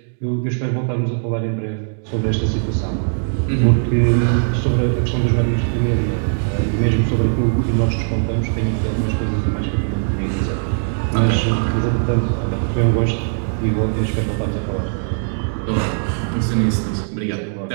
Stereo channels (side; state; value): left; silent; digital silence